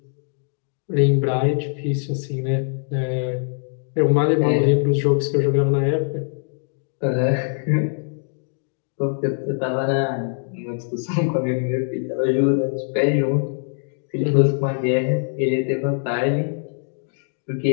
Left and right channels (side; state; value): right; silent; digital silence